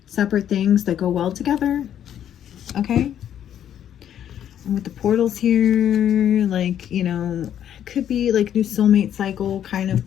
separate things that go well together, okay? And with the portals here, like, you know, it could be, like, new soulmate cycle kind of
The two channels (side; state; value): right; quieter; 10.1 dB